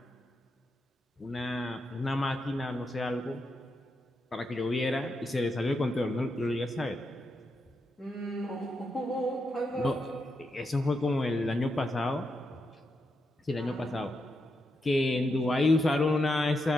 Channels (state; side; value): normal; both; correlation 0.84